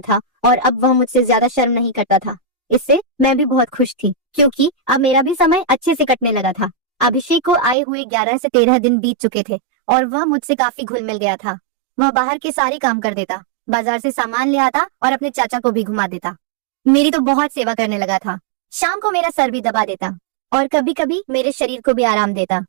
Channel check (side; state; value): left; drops out; at 7.8 s